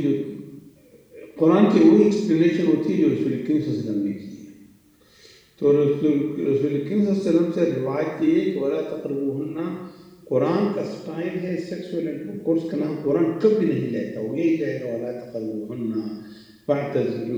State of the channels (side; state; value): both; identical; correlation 1.00